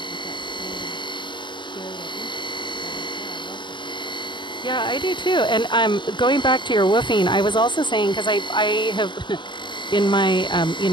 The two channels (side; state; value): right; late; 0.22 ms